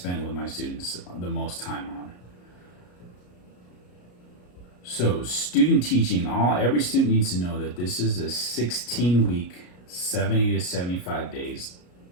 with my students the most time on. So student teaching, every student needs to know that this is a 16-week, 70 to 75 days,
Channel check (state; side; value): late; right; 33 ms